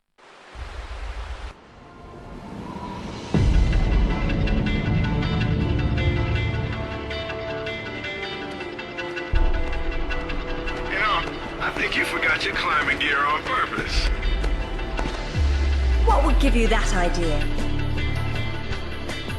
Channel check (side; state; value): both; identical; correlation 1.00